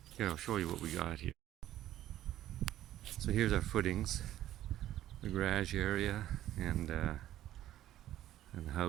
here I'll show you what we got here. So here's our footings, the garage area, and the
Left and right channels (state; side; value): quieter; left; 13.2 dB